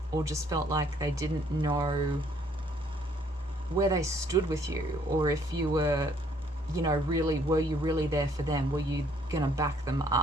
or just felt like they didn't know where they stood with you, or if you were, you know, really, were you really there for them? Were you gonna back them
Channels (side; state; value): both; normal; correlation 0.64